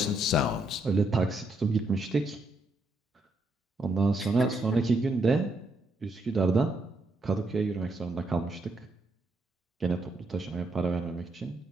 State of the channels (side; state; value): both; normal; correlation 0.78